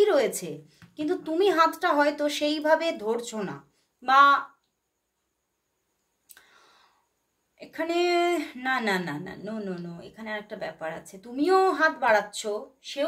রয়েছে, কিন্তু তুমি হাতটা হয়তো সেইভাবে ধরছো না। বা এখানে না না না না, নো নো নো, এখানে একটা ব্যাপার আছে। তুমিও হাত বাড়াচ্ছ,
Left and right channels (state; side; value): identical; both; correlation 1.00